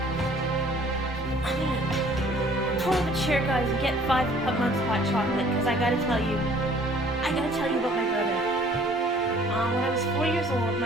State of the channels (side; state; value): both; normal; correlation 0.56